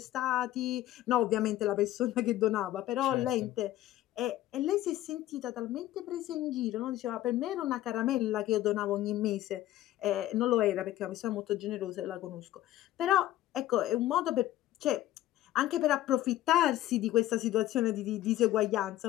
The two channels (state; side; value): quieter; right; 14.2 dB